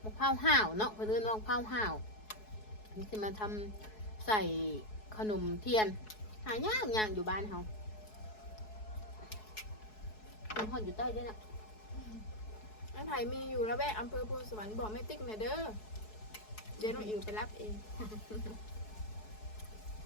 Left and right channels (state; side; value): late; right; 4.7 ms